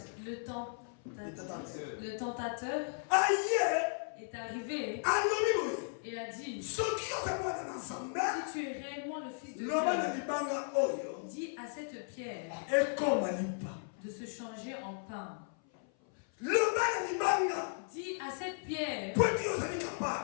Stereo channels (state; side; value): silent; right; 54 dB below the other